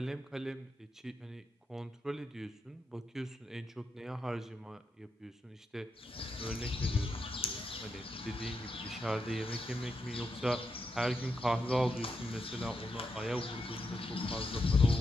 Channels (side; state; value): both; normal; correlation 0.84